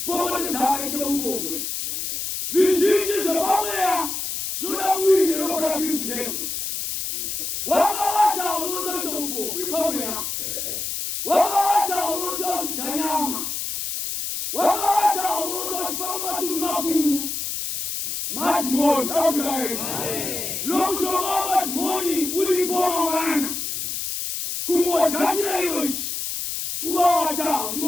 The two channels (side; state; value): left; noise; hiss, 3 dB below the sound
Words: Popote zake kwa ubongwe. Zili zobamea. Zona mwili ni roho la Kristo Yesu. Wakawata uloto cha ubongwe pamea. Wakawata uloto cha kanyama. Wakawata uloto cha matunda makuu. Matimoni Amen. Lokushobaba timoni ulipoma wana. Kumwachachira yoshi. Kuwata,